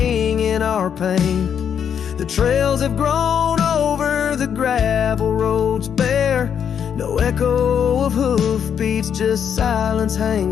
our pain. The trails have grown over the gravel roads bare. No echo of hoofbeats, just silence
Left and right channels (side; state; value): right; quieter; 8.1 dB